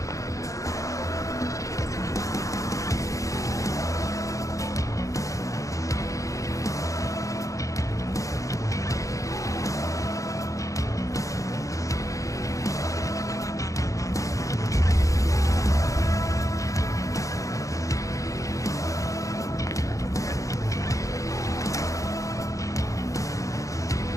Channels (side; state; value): right; late; 0.16 ms